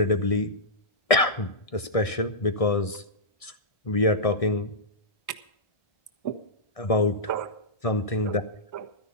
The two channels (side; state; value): right; late; 1.6 ms